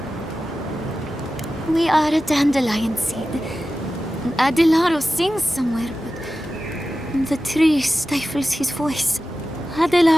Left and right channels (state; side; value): normal; both; correlation 0.94